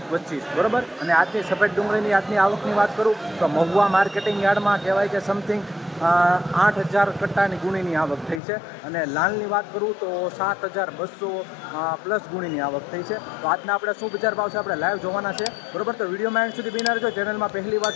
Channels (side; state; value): right; drops out; at 8.4 s